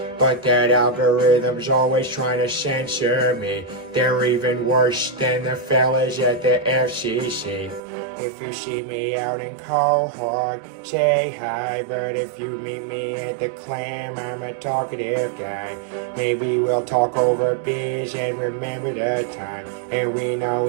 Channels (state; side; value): drops out; left; at 7.8 s